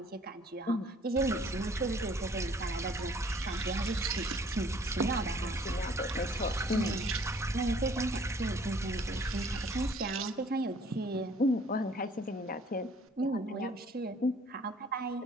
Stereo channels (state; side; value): normal; both; correlation 0.57